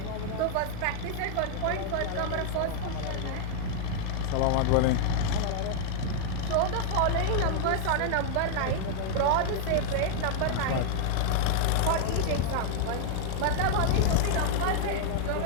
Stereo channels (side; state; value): both; different; correlation 0.00